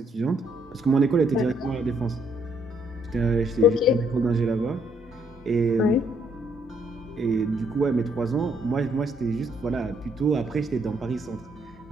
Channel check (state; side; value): normal; both; correlation 0.70